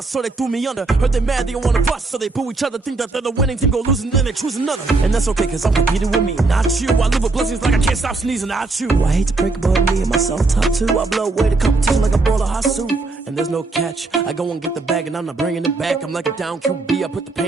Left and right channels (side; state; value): left; quieter; 3.5 dB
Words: so they threw me under. Heard they mad, they don't wanna bust, so they boo each other. Think that they're the winning team, go losing, then they choose another. And that's okay, cause I'm competing with me, not you. I live with blessings like I can't stop sneezing, not you. I hate to break it, but me and myself top two. I blow away the competition like a bowl of hot soup. And there's no catch. I go and get the bag and I'm not bringing it back. I'm like a down QB, I put the